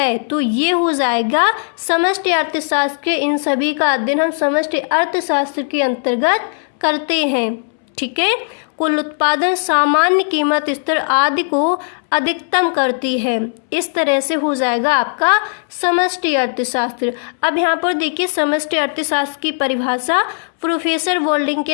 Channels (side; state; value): right; silent; 68 dB below the other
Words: तो ये हो जाएगा समष्टि अर्थशास्त्र के। इन सभी का अध्ययन हम समष्टि अर्थशास्त्र के अंतर्गत करते हैं। ठीक है, कुल उत्पादन, सामान्य कीमत स्तर आदि को अधिकतम करती है। इस तरह से हो जाएगा आपका समष्टि अर्थशास्त्र। अब यहाँ पर देखिए समष्टि अर्थशास्त्र की परिभाषा प्रोफेसर वोल्डिंग